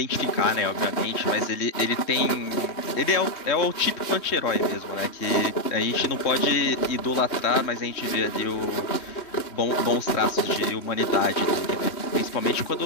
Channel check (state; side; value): late; right; 3.1 ms